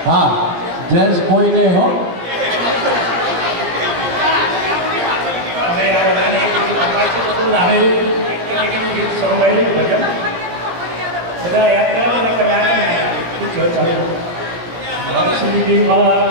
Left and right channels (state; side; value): late; left; 17 ms